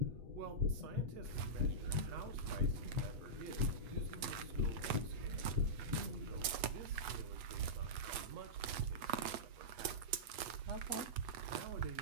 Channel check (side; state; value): left; late; 8.2 ms